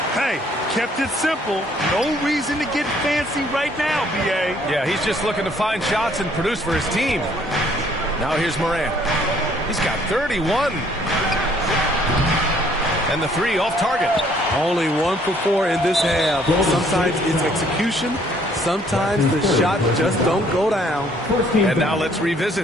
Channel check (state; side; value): normal; both; correlation 0.63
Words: Hey, kept it simple. No reason to get fancy right now, B.A. Yeah, he's just looking to find shots and produce for his team. Now here's Morant. He's got 31. And the 3 off target. Only 1 for 4 in this half. Sometimes it's execution. Sometimes the shot just don't go down. And now let's